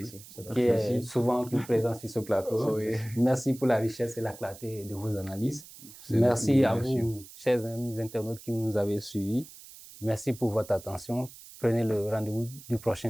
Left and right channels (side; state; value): right; noise; hiss, 18 dB below the sound